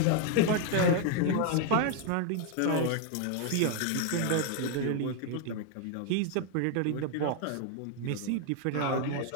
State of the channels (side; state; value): both; different; correlation 0.00